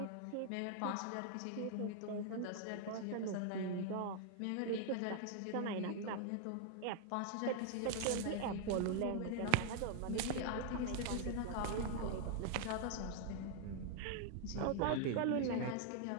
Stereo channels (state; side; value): different; both; correlation 0.00